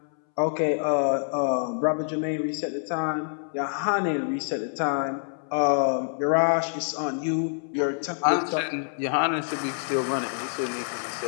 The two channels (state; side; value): silent; right; 61 dB below the other